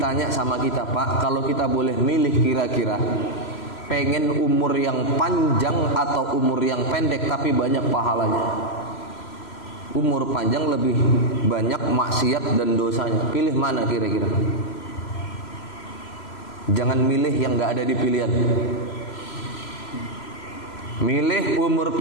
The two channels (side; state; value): right; late; 3.0 ms